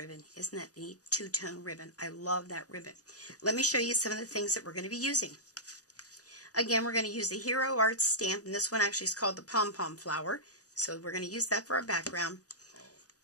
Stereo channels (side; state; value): right; late; 0.67 ms